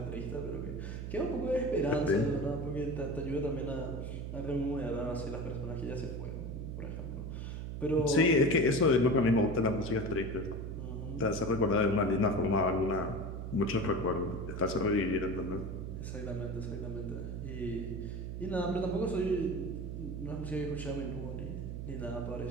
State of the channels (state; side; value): noise; right; hum, 6 dB below the sound